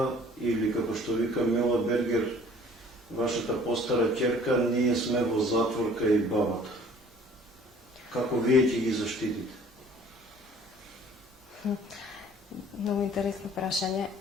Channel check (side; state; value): both; normal; correlation 0.52